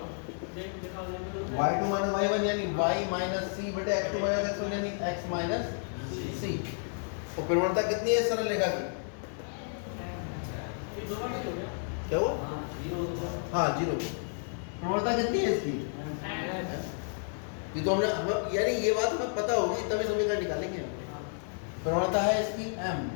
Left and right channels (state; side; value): silent; right; 57 dB below the other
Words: y2 माइनस y1 यानी y माइनस c बटे x2 माइनस x1 यानी x माइनस c। और प्रवणता कितनी है सरल रेखा की? क्या हुआ? हाँ, 0। प्रवणता कितनी है इसकी? ये तो हमने यानी ये बात हमें पता होगी तभी समीकरण निकालेंगे। प्रवणता है इसकी m।